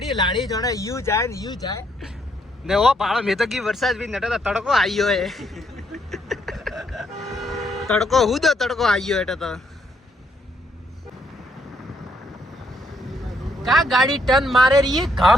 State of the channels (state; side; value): normal; both; correlation 0.73